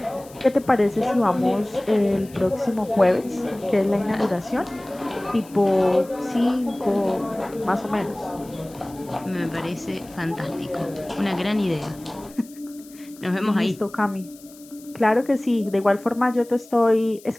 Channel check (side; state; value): left; noise; hiss, 23 dB below the sound